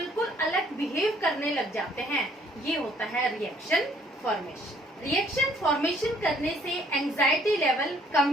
अलग बिहेव करने लग जाते हैं, ये होता है रिएक्शन फॉर्मेशन। रिएक्शन फॉर्मेशन करने से एंजाइटी लेवल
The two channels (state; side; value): normal; both; correlation 0.62